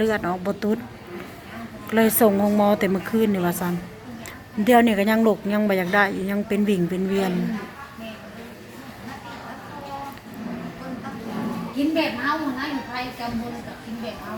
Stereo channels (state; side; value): identical; both; correlation 1.00